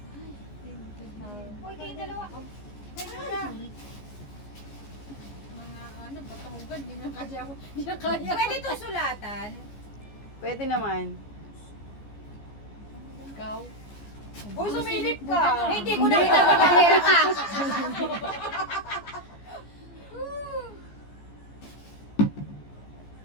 Uy, kayo dalawa. Sorry. Mga ano, patahugan, di na kaya ako. Di na kaya. Pwede to sulatan. Pwede naman. Ikaw. Uy, sumilip ka. Hindi ko nakita magkakera ka.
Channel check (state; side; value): late; right; 14 ms